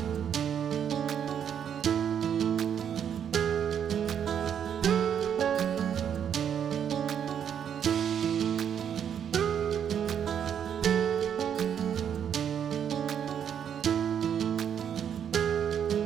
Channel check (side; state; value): left; quieter; 8.5 dB